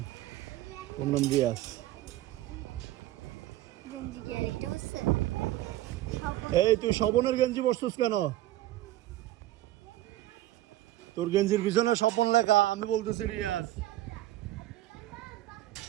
ওর নাম রিয়াজ। এই তুই স্বপনের গেঞ্জি পরছিস কেন? তোর গেঞ্জির পিছনে স্বপন লেখা, আমি বলতেছি রিয়াজ।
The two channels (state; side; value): quieter; left; 15.3 dB